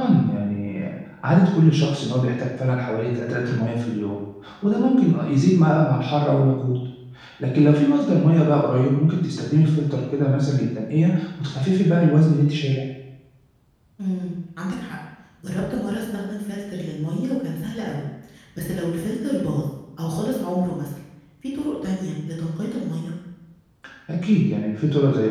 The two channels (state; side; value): identical; both; correlation 1.00